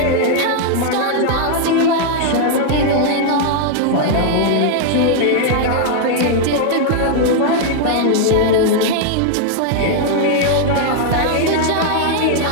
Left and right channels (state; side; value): different; both; correlation 0.00